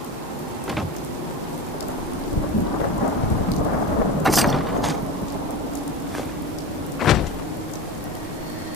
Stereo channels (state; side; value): normal; both; correlation 0.26